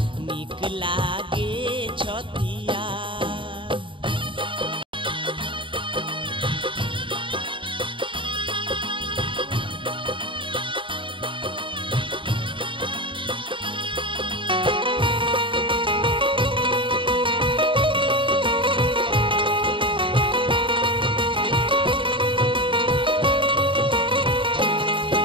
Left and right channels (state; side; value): late; left; 0.24 ms